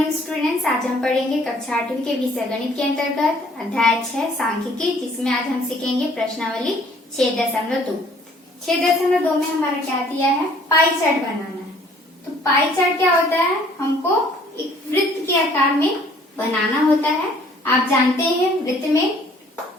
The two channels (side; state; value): both; normal; correlation 0.58